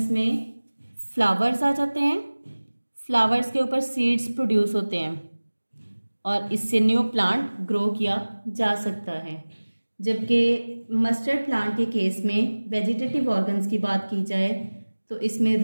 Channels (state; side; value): inverted; both; correlation -1.00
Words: में फ्लावर्स आ जाते हैं। फ्लावर्स के ऊपर सीड्स प्रोड्यूस होते हैं और इससे न्यू प्लांट ग्रो किया जा सकता है। जबकि मस्टर्ड प्लांट के केस में वेजिटेटिव ऑर्गन्स की बात की जाए तो इसमें